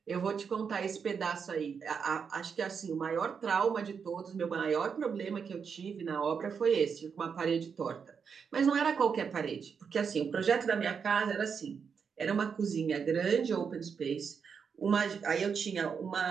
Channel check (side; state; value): left; quieter; 6.3 dB